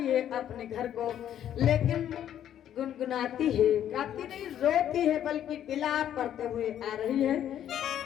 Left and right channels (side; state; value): right; quieter; 10.6 dB